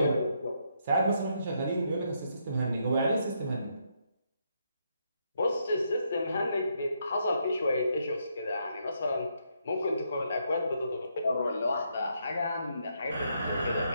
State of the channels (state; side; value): inverted; both; correlation -0.77